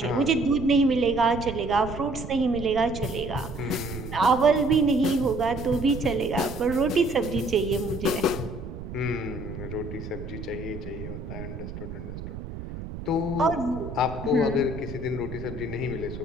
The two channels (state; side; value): noise; right; rumble, 9 dB below the sound